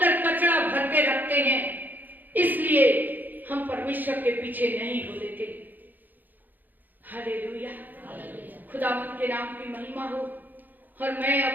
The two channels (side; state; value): left; late; 0.086 ms